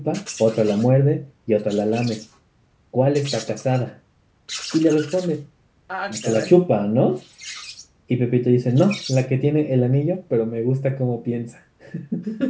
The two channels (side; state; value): both; identical; correlation 1.00